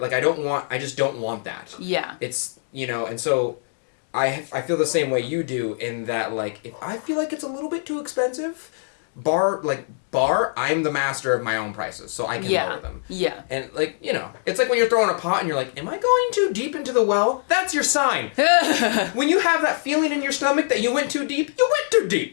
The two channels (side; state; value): right; silent; digital silence